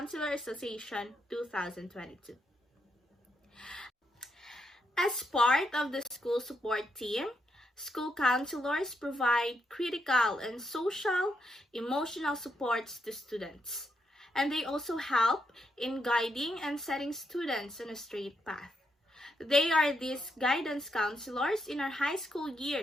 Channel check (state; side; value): normal; both; correlation 0.80